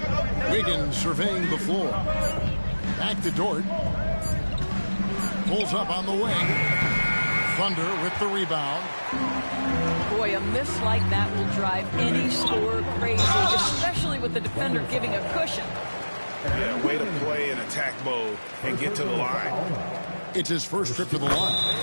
Wiggins surveying the floor. Back to Dort. Pulls up on the wing. Thunder with the rebound. Boy, a miss like that will drive any scorer crazy, especially with the defender giving a cushion. Yeah, way to play in attack mode and get to the line. It's his first trip to the line.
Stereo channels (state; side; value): inverted; both; correlation -1.00